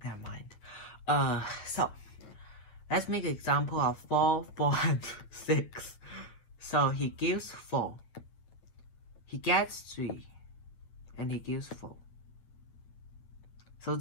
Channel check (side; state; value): right; late; 8.7 ms